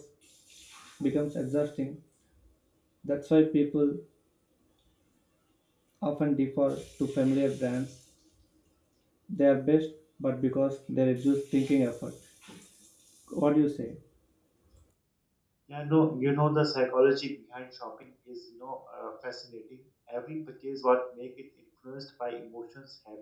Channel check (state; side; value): identical; both; correlation 1.00